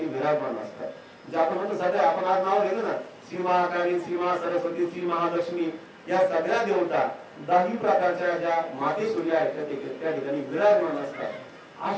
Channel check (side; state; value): both; identical; correlation 1.00